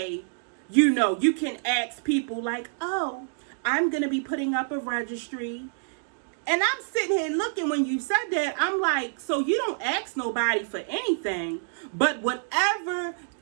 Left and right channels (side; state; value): left; silent; digital silence